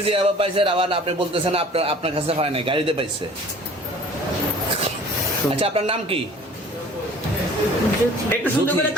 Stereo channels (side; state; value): both; normal; correlation 0.49